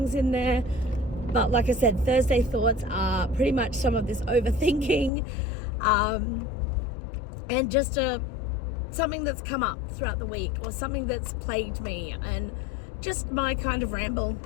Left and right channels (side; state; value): right; drops out; at 5.1 s